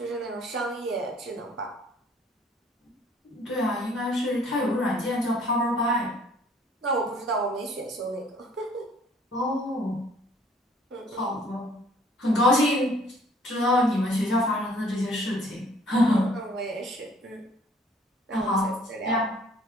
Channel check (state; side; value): normal; both; correlation 0.58